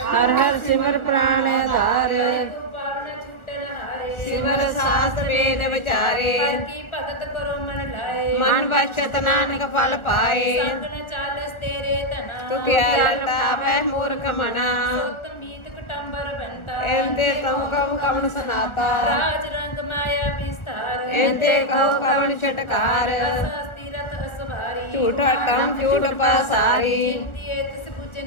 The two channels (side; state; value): right; late; 1.4 ms